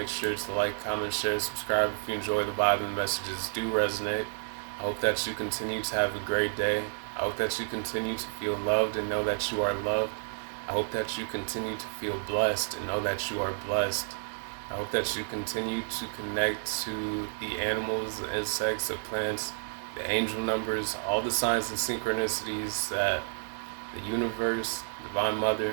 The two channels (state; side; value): silent; left; digital silence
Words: sure to like, comment, share, subscribe if you enjoy the vibe and the messages do resonate. I hope that you continue to have a great day. I hope that you continue to feel loved and know that you are loved. I hope that you continue to feel blessed and know that you are blessed. I hope that you continue to connect to the animals, the insects, the plants, the angel numbers, all the signs and synchronicities that the universe, Divine Mother,